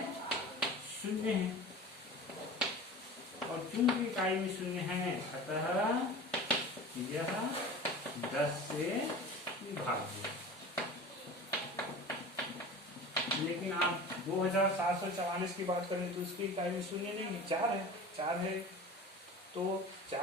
और चूंकि इकाई में शून्य है अतः यह 10 से विभाज्य। लेकिन आप 2744 की बात करें तो उसकी इकाई में शून्य नहीं है, 4 है, तो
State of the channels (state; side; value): normal; both; correlation 0.36